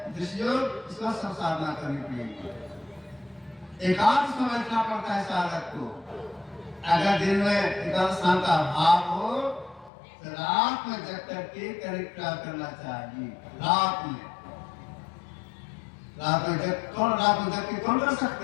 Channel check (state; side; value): drops out; right; at 9.9 s